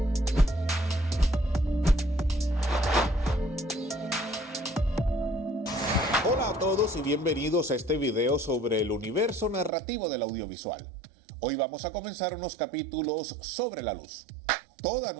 Hola a todos y bienvenidos a este video sobre el universo narrativo del audiovisual. Hoy vamos a comenzar unos capítulos sobre la luz. Toda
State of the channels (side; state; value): left; drops out; at 9.7 s